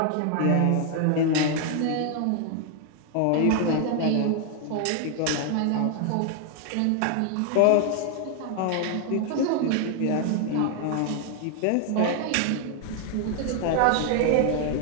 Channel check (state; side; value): different; both; correlation 0.00